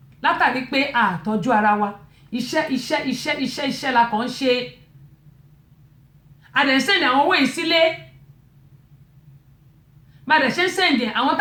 látàrí pé àtọ́jú ara wa iṣẹ́ la kàn ń ṣe àdẹ̀sẹ̀ndì àwọn owó yìí sílé bàdẹ̀ ṣe ń sẹ̀ndì àwọn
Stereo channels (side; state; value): both; identical; correlation 1.00